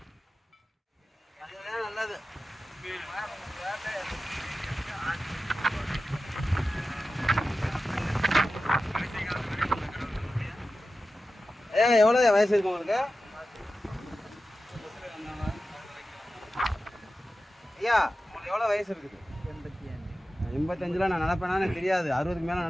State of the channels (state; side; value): normal; both; correlation 0.94